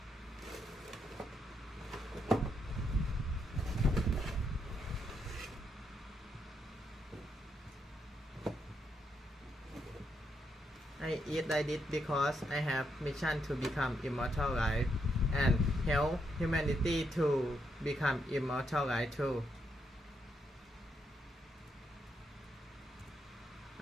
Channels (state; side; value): normal; both; correlation 0.79